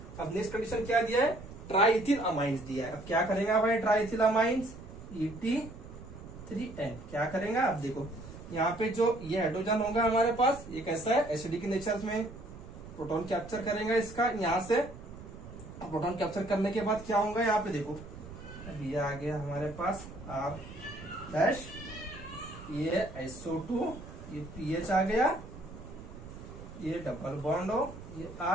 अब नेक्स्ट कंडीशन क्या दिया है, ट्राइथिल अमाइंस दिया है। अब क्या करेगा भाई ट्राइथिल अमाइंस, Et3N क्या करेगा, अब देखो यहाँ पे जो ये हाइड्रोजन होगा हमारे पास, ये कैसा है, एसिडिक नेचर में, प्रोटॉन कैप्चर करेगा इसका यहाँ से। प्रोटॉन कैप्चर करने के बाद क्या होगा, यहाँ पे देखो अब ये आ गया हमारे पास R डैश, ये SO2, ये PH आ गया, ये डबल बॉन्ड हो, ये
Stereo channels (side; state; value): right; noise; rumble, 14 dB below the sound